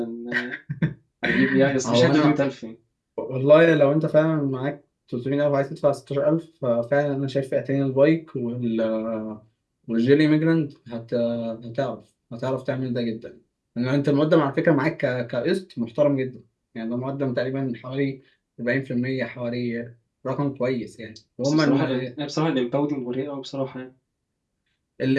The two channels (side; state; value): both; identical; correlation 1.00